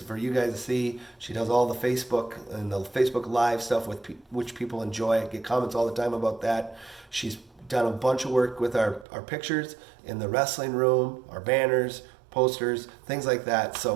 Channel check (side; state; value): left; drops out; at 9.1 s